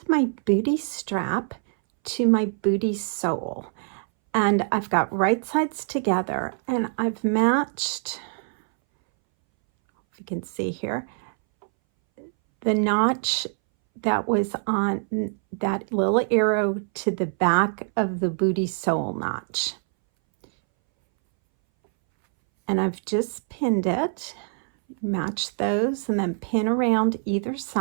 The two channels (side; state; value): left; silent; 61 dB below the other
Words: my booty strap to my booty sole, and I've got right sides together, and I've matched, if you can see here, the notch that was on that little arrow to the back of the booty sole notch. And I've just pinned it, match those, and then pin around either